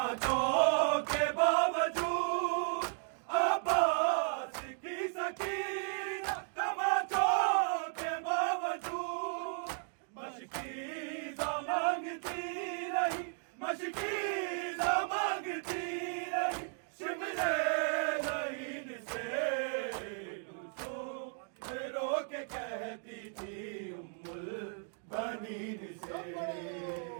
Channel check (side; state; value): left; silent; 54 dB below the other